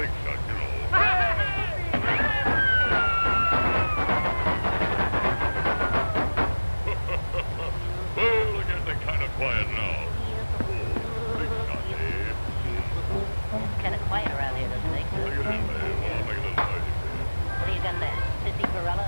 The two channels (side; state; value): both; inverted; correlation -1.00